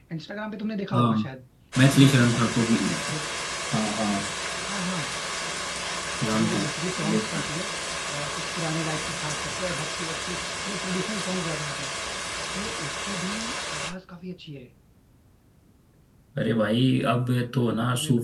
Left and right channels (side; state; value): both; identical; correlation 1.00